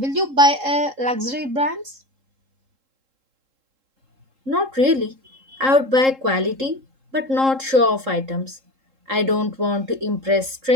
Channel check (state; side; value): late; left; 3.7 ms